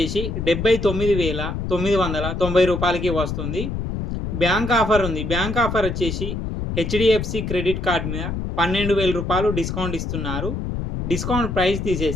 79,990 రూపాయలకి వస్తుంది. బ్యాంక్ ఆఫర్ ఉంది. బ్యాంక్ ఆఫర్ వచ్చేసి హెచ్డిఎఫ్సి క్రెడిట్ కార్డ్ మీద 12,000 రూపాయలు డిస్కౌంట్ ఇస్తున్నారు. డిస్కౌంట్ ప్రైస్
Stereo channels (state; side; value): noise; left; rumble, 4 dB below the sound